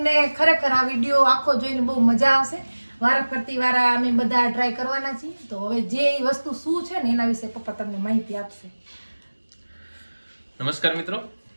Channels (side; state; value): both; inverted; correlation -1.00